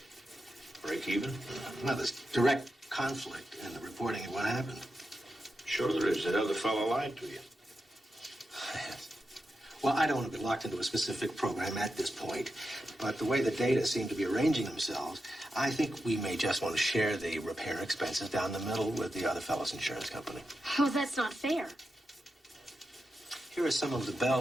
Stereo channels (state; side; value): normal; both; correlation 0.88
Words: Break-even? Well, there's direct conflict in the reporting of what happened. Sure there is. That other fellow lied to you. Well, I don't want to be locked into a specific program at this point, but the way the data seem to be arranging themselves, I think we may just want to share the repair expenses down the middle with the other fellow's insurance company. Oh, that's not fair. Here are some of the